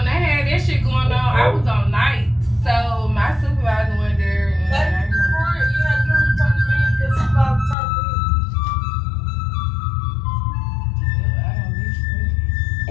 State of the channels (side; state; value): right; drops out; at 7.8 s